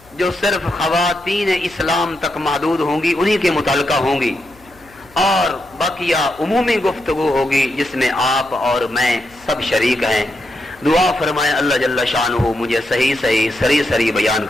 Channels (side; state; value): left; noise; hum, 27 dB below the sound